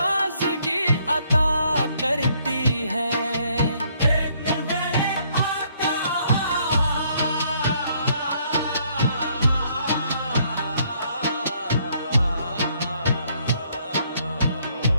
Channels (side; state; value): both; inverted; correlation -0.68